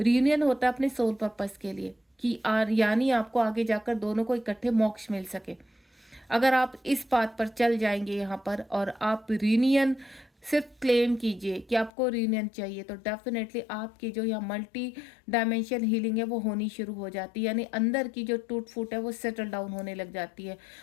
रीयूनियन होता है अपने सोल पर्पस के लिए, कि यानी आपको आगे जाकर दोनों को इकट्ठे मोक्ष मिल सके। अगर आप इस बात पर चल जाएंगे यहाँ पर और आप रीयूनियन सिर्फ क्लेम कीजिए कि आपको रीयूनियन चाहिए, तो डेफिनेटली आपकी जो यहाँ मल्टी डायमेंशन हीलिंग है वो होनी शुरू हो जाती है, यानी अंदर की जो टूट फूट है वो सेटल डाउन होने लग जाती है।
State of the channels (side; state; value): right; drops out; at 11.9 s